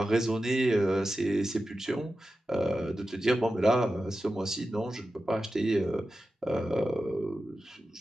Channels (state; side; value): normal; both; correlation 0.92